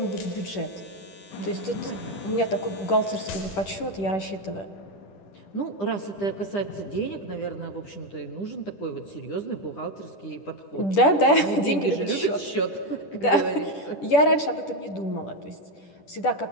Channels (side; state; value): right; late; 10 ms